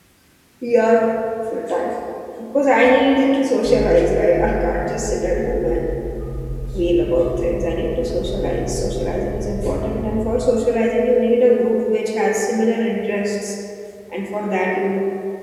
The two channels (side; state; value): both; identical; correlation 1.00